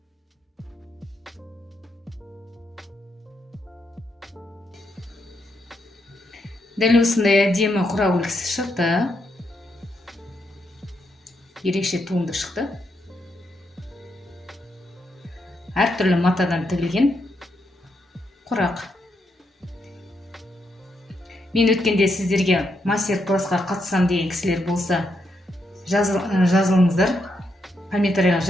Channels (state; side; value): normal; both; correlation 0.80